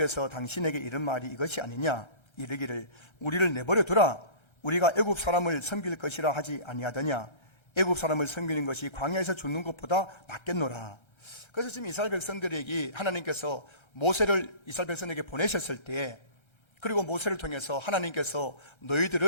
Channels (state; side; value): late; right; 1.3 ms